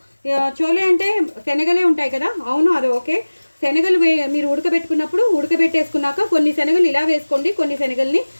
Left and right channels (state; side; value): inverted; both; correlation -1.00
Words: చోలే అంటే శనగలే ఉంటాయి కదా, అవును అది ఓకే. శనగలు మీరు ఉడకబెట్టుకున్నప్పుడు ఉడకబెట్టేసుకున్నాక కొన్ని శనగలు ఇలా వేసుకోండి, కొన్ని శనగల్ని